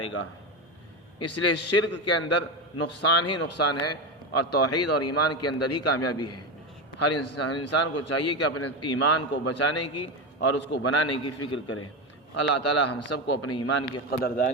گا۔ اس لیے شرک کے اندر نقصان ہی نقصان ہے اور توحید اور ایمان کے اندر ہی کامیابی ہے۔ ہر انسان کو چاہیے کہ اپنے ایمان کو بچانے کی اور اس کو بنانے کی فکر کرے۔ اللہ تعالی ہم سب کو اپنے ایمان کی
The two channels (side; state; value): both; normal; correlation 0.15